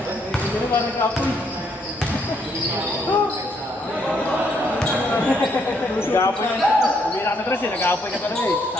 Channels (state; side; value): normal; both; correlation 0.72